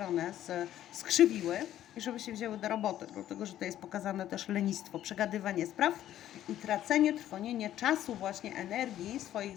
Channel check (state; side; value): quieter; right; 12.2 dB